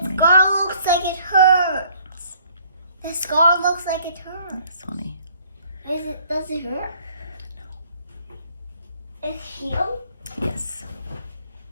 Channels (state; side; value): inverted; both; correlation -0.60